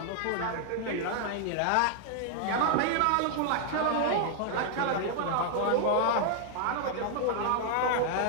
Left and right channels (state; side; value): different; both; correlation -0.01